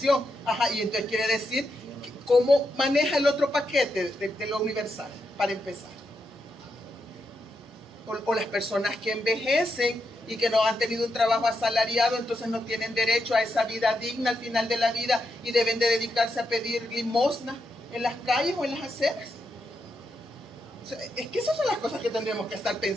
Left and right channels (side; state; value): both; normal; correlation 0.84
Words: Y entonces quiere decir, ¿cómo maneja el otro paquete de lo universal, para empezar? O las personas que envejecen y que no han tenido un trabajo asalariado, entonces no tienen derecho a esa vida digna al final de la vida y deben de dedicarse a pedir limosna en las calles o en las aceras. O sea, es que esas son las cosas que tendremos que estar